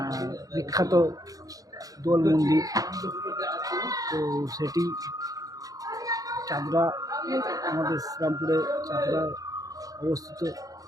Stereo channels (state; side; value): late; left; 0.17 ms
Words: বিখ্যাত দোল মন্দির। তো সেটি চাঁদরা, আমাদের শ্রীরামপুরে চাঁদরায় অবস্থিত।